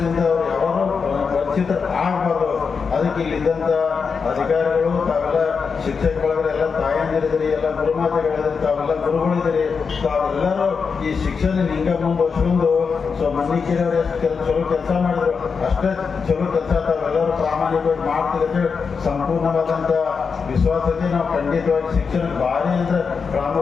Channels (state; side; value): quieter; right; 5.5 dB